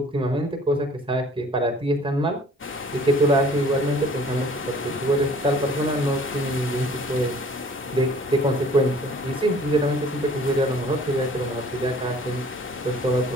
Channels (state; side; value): normal; both; correlation 0.52